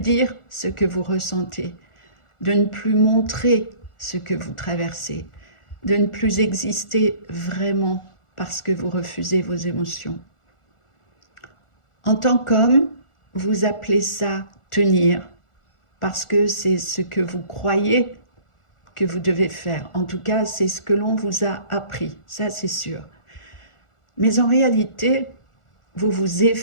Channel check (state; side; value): late; right; 1.4 ms